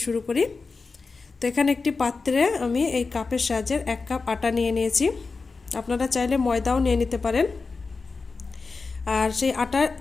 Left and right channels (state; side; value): quieter; right; 4.3 dB